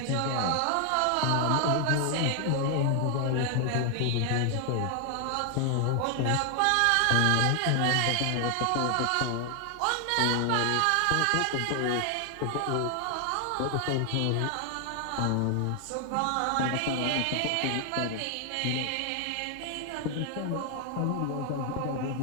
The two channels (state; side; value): different; both; correlation 0.00